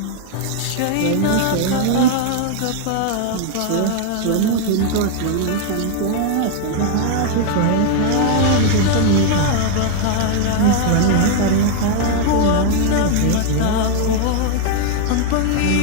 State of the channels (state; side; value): different; both; correlation 0.00